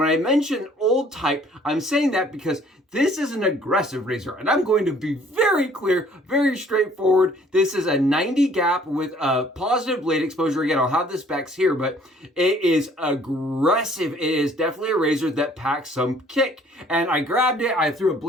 I mention old type, I'm saying that because this is an aggressive razor, and I'm going to be very clear, very straightforward. This is a 90 gap with a positive blade exposure. Again, I'll have the specs here, but it is aggressive. It is definitely a razor that packs some kick. And I grabbed it, I threw a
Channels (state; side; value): normal; both; correlation 0.58